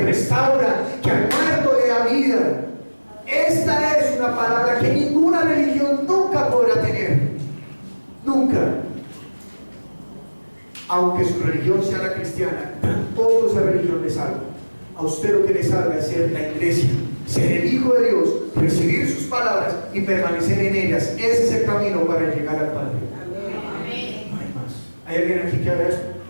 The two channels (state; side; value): inverted; both; correlation -1.00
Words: restaura, que al muerto le da vida. Esta es una palabra que ninguna religión nunca podrá tener. Nunca. Aunque su religión sea la cristiana, tampoco esa religión le salva. A usted lo que le salva es ser la iglesia, ser el Hijo de Dios, recibir sus palabras y permanecer en ellas. Ese es el camino para llegar al Padre. Amén. No hay más. ¿Hay alguien aquí que haga eso?